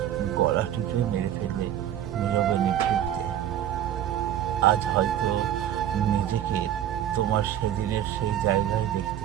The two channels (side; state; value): left; quieter; 11.1 dB